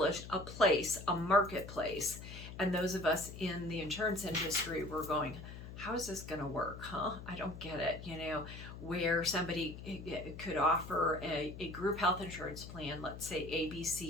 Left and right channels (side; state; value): left; noise; hum, 12 dB below the sound